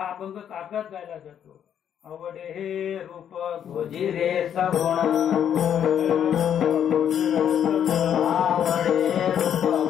अभंग काकड्यात गायला जातो. आवडे हे रूप गोजिरे सगुण, आवडे रूप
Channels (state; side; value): quieter; right; 9.2 dB